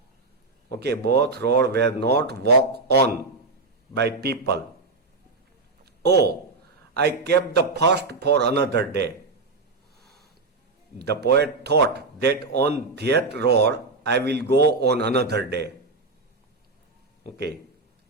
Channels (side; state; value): left; quieter; 3.7 dB